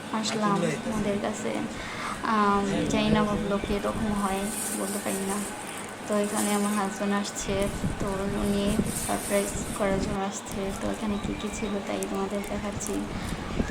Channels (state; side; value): identical; both; correlation 1.00